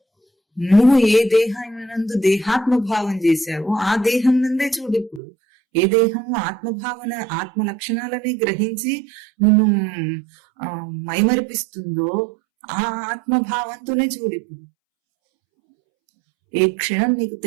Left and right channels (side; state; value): left; drops out; at 5.2 s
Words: నువ్వు ఏ దేహానందు దేహాత్మ భావం చేశావో ఆ దేహం నందే చూడు. ఇప్పుడు ఏ దేహము ఆత్మభావన ఆత్మ లక్షణాలని గ్రహించి నిన్ను మైమరిపిస్తుందో ఆ ఆత్మభావంతోనే చూడు ఇప్పుడు. ఏ క్షణం నీకు